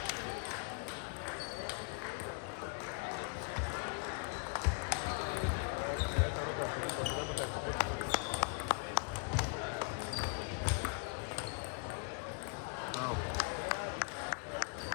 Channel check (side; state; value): right; quieter; 36.5 dB